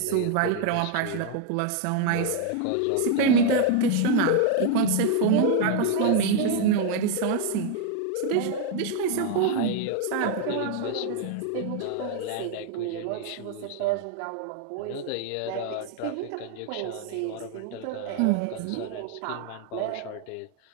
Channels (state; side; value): different; both; correlation 0.01